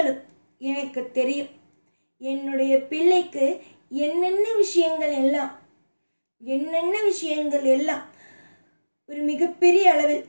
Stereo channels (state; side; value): inverted; both; correlation -1.00